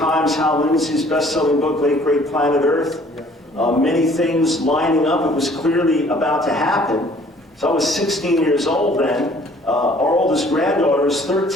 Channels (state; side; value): normal; both; correlation 0.56